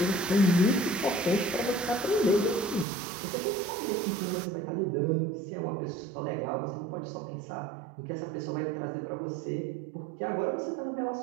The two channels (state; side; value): drops out; left; at 2.9 s